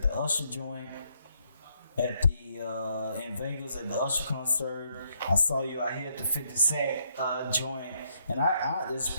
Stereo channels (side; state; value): both; inverted; correlation -0.74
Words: the Usher joint, at the in Vegas at the Usher concert, I saw you out here at the 50 Cent joint, and I just